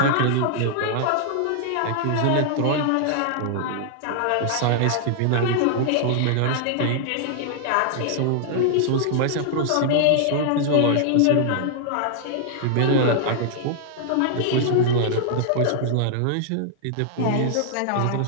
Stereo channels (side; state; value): both; different; correlation -0.01